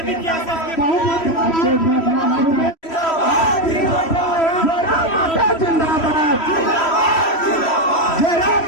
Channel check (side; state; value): right; late; 3.1 ms